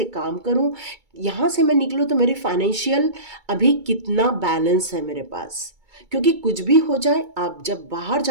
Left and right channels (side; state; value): left; late; 2.3 ms